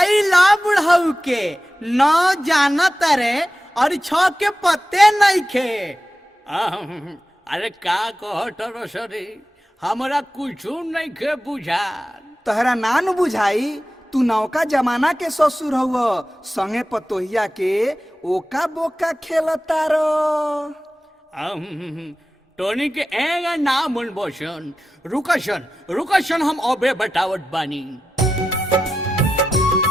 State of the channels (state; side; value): normal; both; correlation 0.92